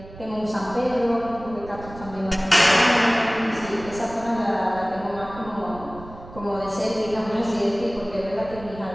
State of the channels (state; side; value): noise; right; rumble, 16 dB below the sound